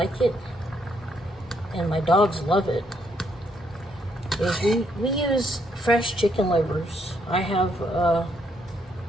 it, and my dogs love it. Is we use fresh chicken livers. I have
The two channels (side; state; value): both; normal; correlation 0.73